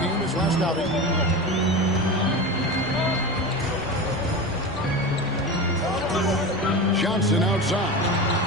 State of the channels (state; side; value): normal; both; correlation 0.26